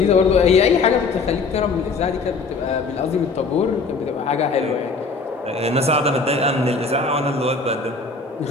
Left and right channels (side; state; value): right; quieter; 4.2 dB